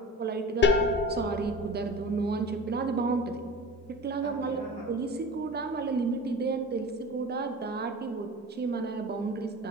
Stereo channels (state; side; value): normal; both; correlation 0.34